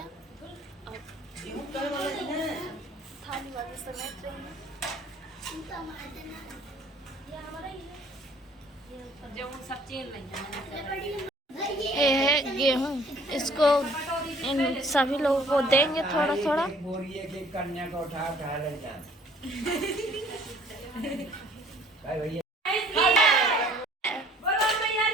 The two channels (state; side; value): normal; both; correlation 0.56